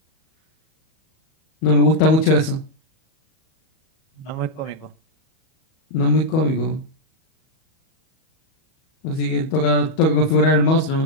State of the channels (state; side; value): late; right; 37 ms